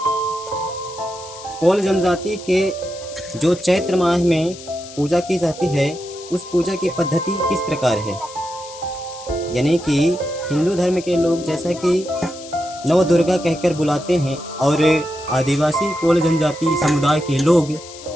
कोल जनजाति के जो चैत्र माह में पूजा की जाती है उस पूजा की पद्धति किस प्रकार है। यानी कि हिंदू धर्म के लोग जैसा कि नव दुर्गा कहकर बुलाते हैं और आदिवासी कोल जनजाति समुदाय के लोग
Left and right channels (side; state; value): left; noise; hiss, 16 dB below the sound